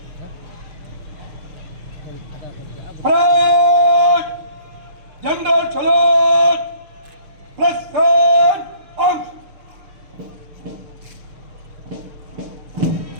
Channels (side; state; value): left; late; 6.6 ms